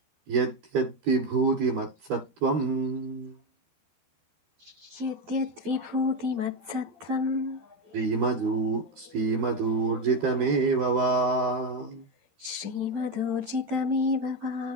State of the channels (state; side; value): late; left; 12 ms